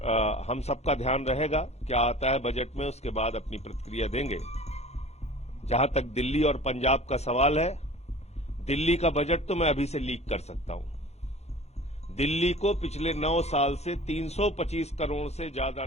हम सबका ध्यान रहेगा। क्या आता है बजट में, उसके बाद अपनी प्रतिक्रिया देंगे। जहां तक दिल्ली और पंजाब का सवाल है, दिल्ली का बजट तो मैं अभी से लीक कर सकता हूं। दिल्ली को पिछले 9 साल से 325 करोड़ से ज्यादा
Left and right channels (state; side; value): late; right; 0.31 ms